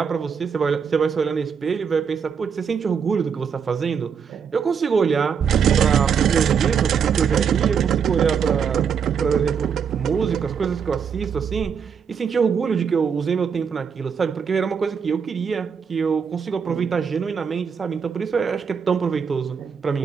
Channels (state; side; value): quieter; left; 6.7 dB